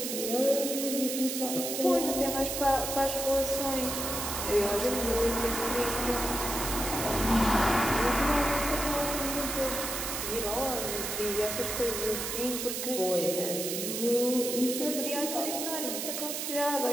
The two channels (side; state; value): right; noise; hiss, 3 dB below the sound